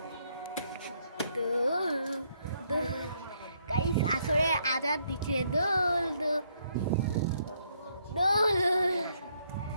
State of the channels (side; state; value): both; inverted; correlation -0.72